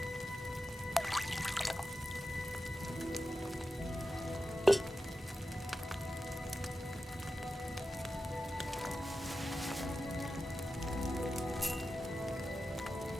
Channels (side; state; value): both; normal; correlation 0.92